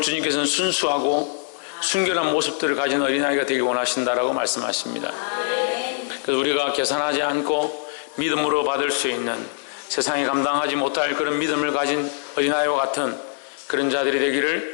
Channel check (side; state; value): right; silent; digital silence